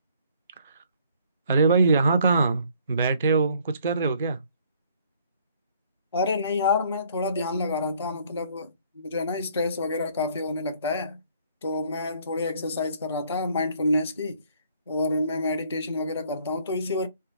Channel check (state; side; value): inverted; both; correlation -0.61